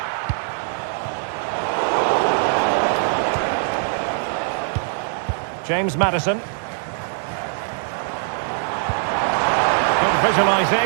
James Maddison. Good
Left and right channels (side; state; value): left; silent; digital silence